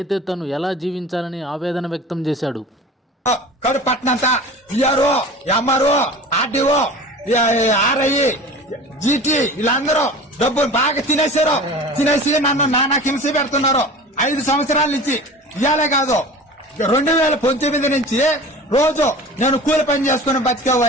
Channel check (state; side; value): normal; both; correlation 0.38